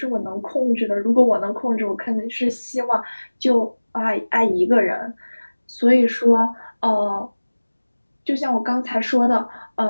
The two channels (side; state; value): both; inverted; correlation -1.00